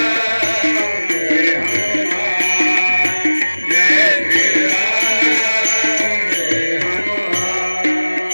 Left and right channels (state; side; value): inverted; both; correlation -1.00